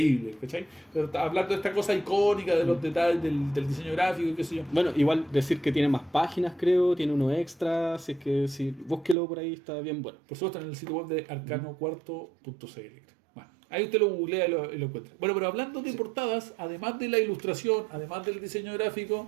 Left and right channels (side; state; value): left; drops out; at 9.2 s